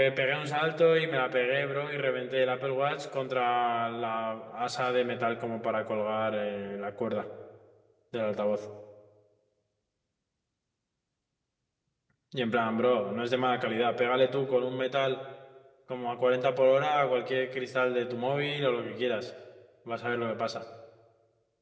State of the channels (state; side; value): identical; both; correlation 1.00